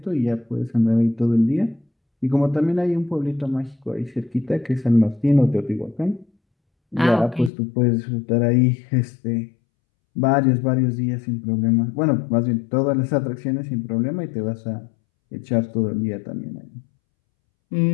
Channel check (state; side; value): drops out; right; at 7.5 s